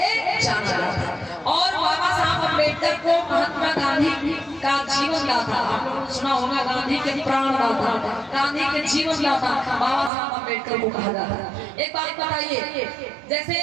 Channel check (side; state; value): left; drops out; at 10.1 s